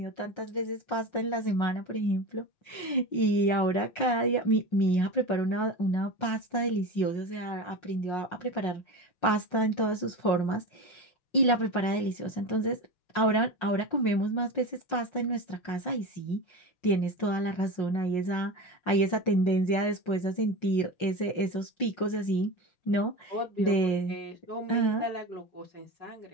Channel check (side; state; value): right; late; 5.5 ms